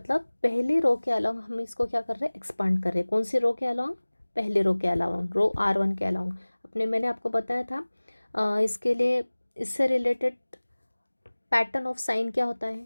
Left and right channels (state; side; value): inverted; both; correlation -1.00